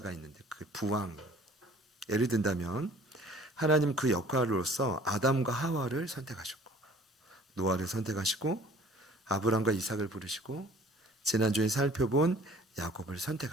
있는데 그 부왕. 예를 든다면 하나님 그 역할로서 아담과 하와를 선택하셨고 노아를 선택하시고 아브람과 이삭을 부르시고 지난주에 살펴본 야곱을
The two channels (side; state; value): both; normal; correlation 0.51